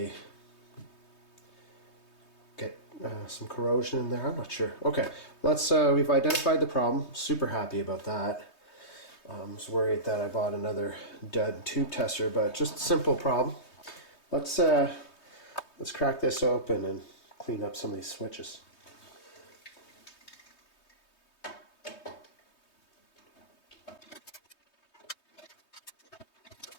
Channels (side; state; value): right; late; 3.2 ms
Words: get some corrosion in there. I'm not sure. Okay, we've identified the problem. Super happy about that. I was worried that I bought another dud tube tester, but just a simple problem. Let's crack this open and clean up some of these switches.